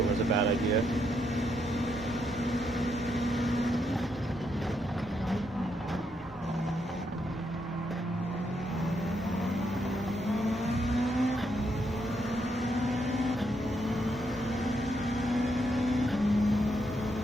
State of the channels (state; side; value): normal; both; correlation 0.78